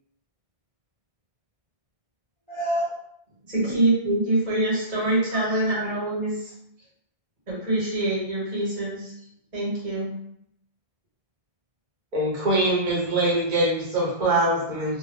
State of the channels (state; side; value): late; left; 1.6 ms